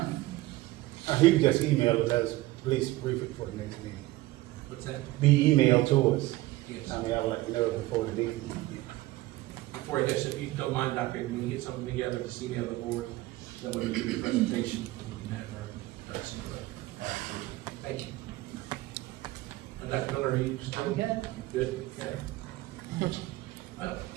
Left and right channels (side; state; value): left; quieter; 18.2 dB